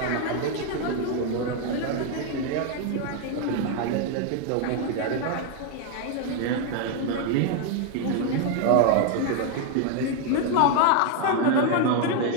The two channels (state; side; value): different; both; correlation 0.01